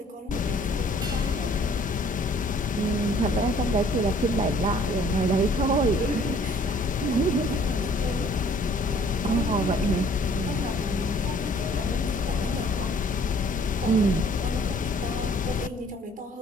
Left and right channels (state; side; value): normal; both; correlation 0.57